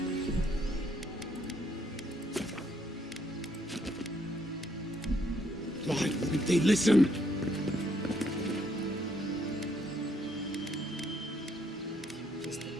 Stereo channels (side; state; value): both; normal; correlation 0.71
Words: Why wouldn't they listen?